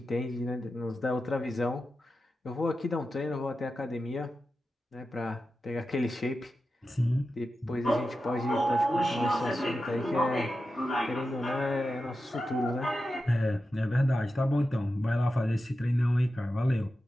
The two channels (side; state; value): both; normal; correlation 0.91